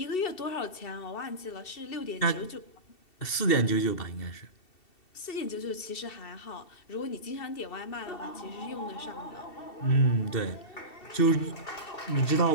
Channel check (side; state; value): right; late; 2.7 ms